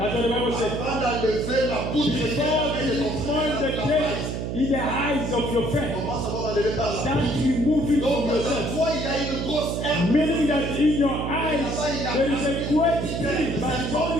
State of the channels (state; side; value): noise; right; hum, 3 dB below the sound